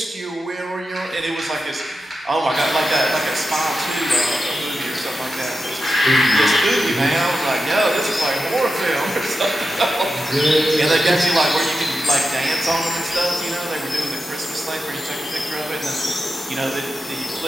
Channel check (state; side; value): normal; both; correlation 0.90